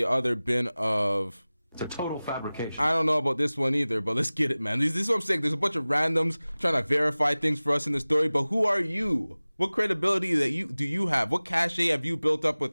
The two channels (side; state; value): both; inverted; correlation -0.98